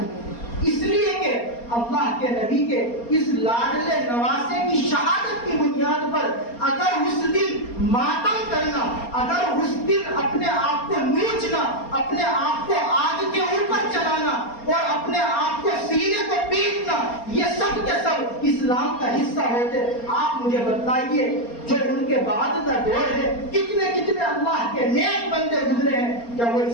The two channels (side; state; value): right; late; 4.3 ms